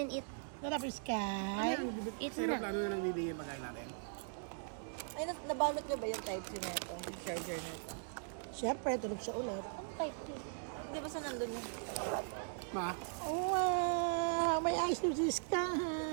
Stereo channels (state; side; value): silent; left; digital silence